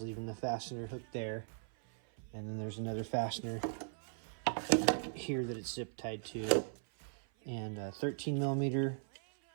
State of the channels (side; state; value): left; silent; 52 dB below the other